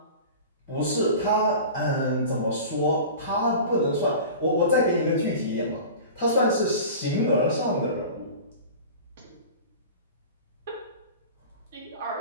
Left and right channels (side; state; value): both; inverted; correlation -0.36